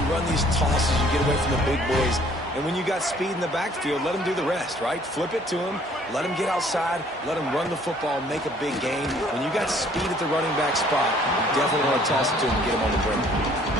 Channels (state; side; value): normal; both; correlation 0.59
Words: run these tosses, you get away from the big boys. And when you got speed in the backfield, let them do the rest, right? Flip it to them, let them get outside, let them run the football, make a big gain. When you got speed at the running back spot, you definitely want to toss it to him and get him on the perimeter.